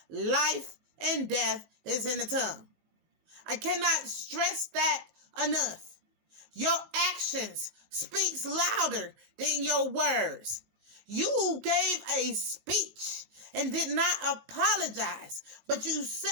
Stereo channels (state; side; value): late; left; 19 ms